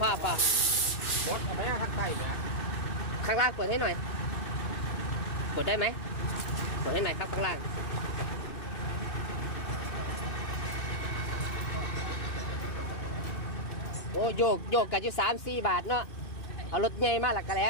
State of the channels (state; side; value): late; right; 2.6 ms